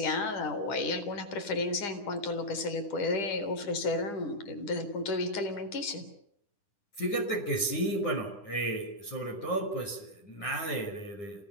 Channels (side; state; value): right; late; 9.9 ms